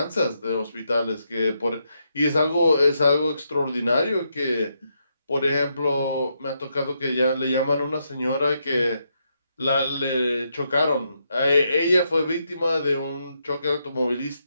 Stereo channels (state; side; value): inverted; both; correlation -0.80